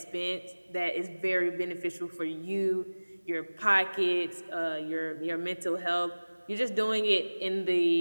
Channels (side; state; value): both; inverted; correlation -1.00